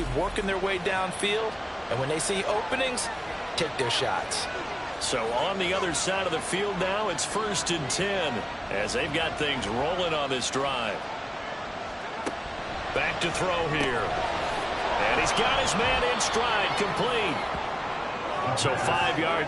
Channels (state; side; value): identical; both; correlation 1.00